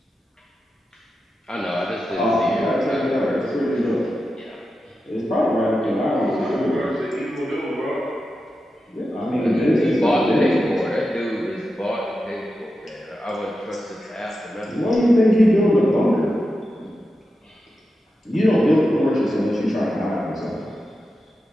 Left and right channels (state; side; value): normal; both; correlation 0.90